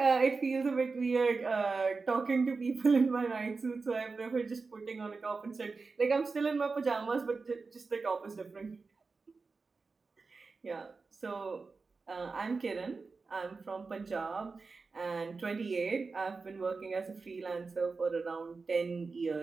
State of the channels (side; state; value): left; quieter; 4.3 dB